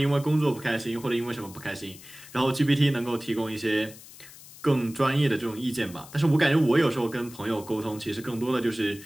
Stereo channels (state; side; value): noise; left; hiss, 19 dB below the sound